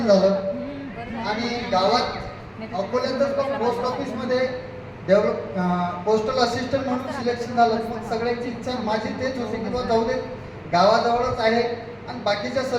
झालं. आणि गावात अकोल्यातच पण पोस्ट ऑफिसमध्ये पोस्टल असिस्टंट म्हणून सिलेक्शन झालं. मग सगळ्यांची इच्छा माझी तेच होती की बा जाऊ दे, गावाजवळच आहे आणि बाकीच्या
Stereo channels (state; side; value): identical; both; correlation 1.00